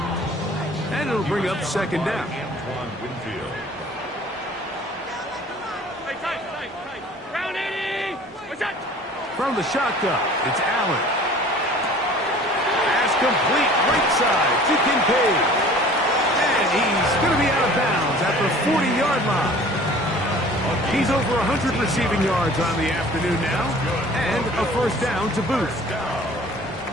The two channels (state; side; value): normal; both; correlation 0.48